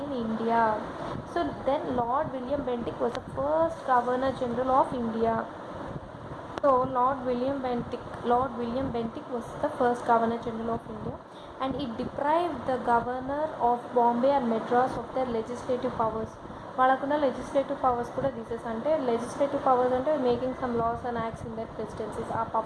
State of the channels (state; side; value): identical; both; correlation 1.00